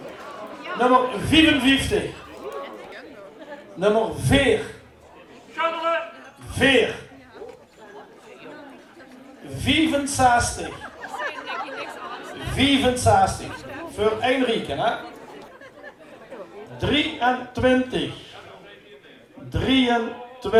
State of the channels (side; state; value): both; identical; correlation 1.00